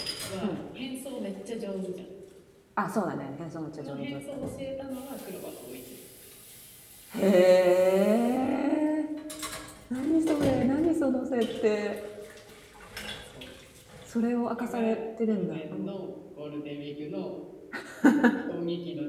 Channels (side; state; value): both; identical; correlation 1.00